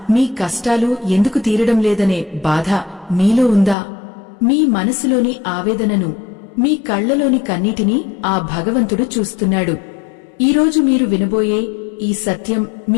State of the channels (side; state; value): right; drops out; at 3.8 s